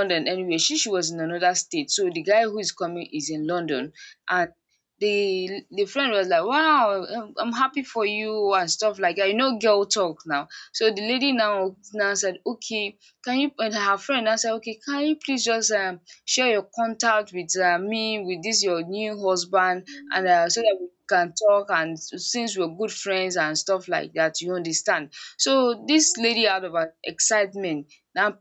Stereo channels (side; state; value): both; identical; correlation 1.00